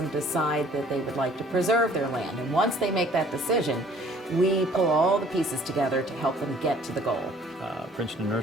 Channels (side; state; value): both; normal; correlation 0.55